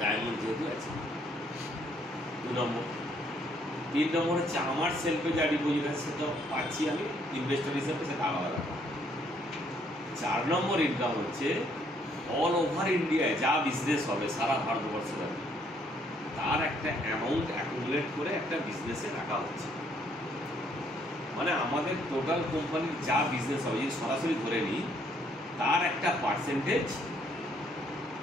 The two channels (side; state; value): both; normal; correlation 0.67